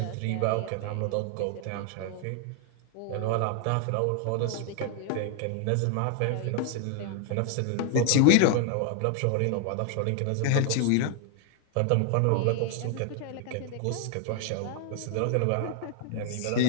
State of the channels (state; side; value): different; both; correlation 0.00